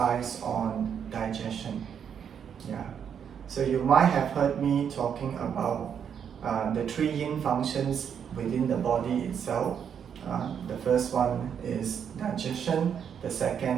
on digestion. So you might have heard me talking about the three yin functions within the body itself. The first one is digestion, the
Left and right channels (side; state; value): left; quieter; 7.9 dB